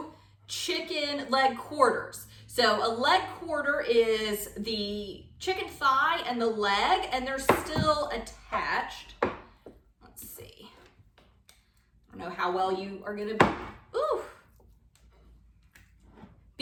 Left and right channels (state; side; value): identical; both; correlation 1.00